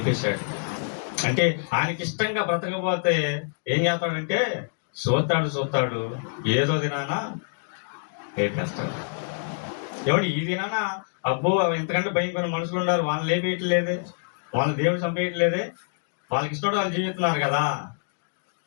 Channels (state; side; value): silent; right; digital silence